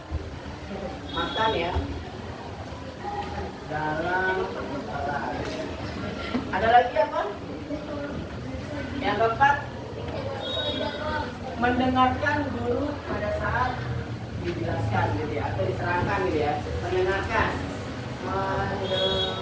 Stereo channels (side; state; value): both; identical; correlation 1.00